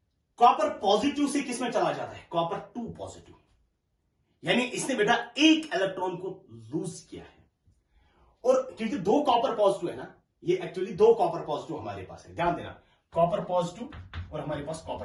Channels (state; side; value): identical; both; correlation 1.00